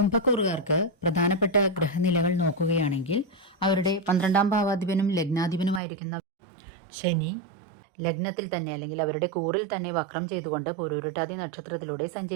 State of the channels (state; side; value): drops out; left; at 5.8 s